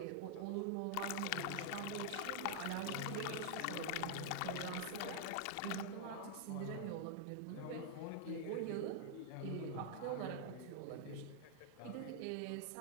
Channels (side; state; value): both; different; correlation 0.00